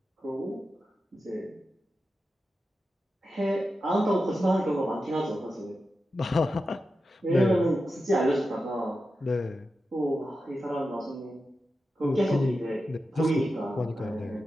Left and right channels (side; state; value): both; normal; correlation 0.91